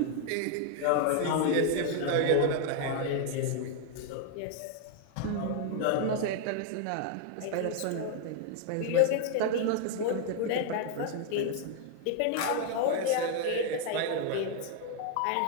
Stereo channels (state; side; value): different; both; correlation 0.00